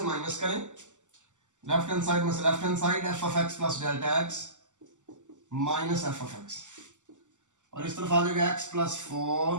माइनस करें, लेफ्ट हैंड साइड में से left hand side F of x plus delta x minus f of x, और इस तरफ आ जाएगा x plus 4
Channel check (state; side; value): late; left; 0.85 ms